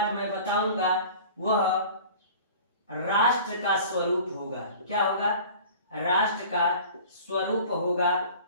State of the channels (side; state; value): both; inverted; correlation -0.43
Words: मैं बताऊंगा वह राष्ट्र का स्वरूप होगा। क्या होगा? राष्ट्र का स्वरूप होगा।